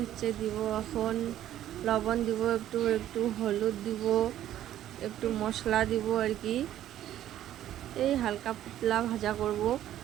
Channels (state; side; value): quieter; left; 12.2 dB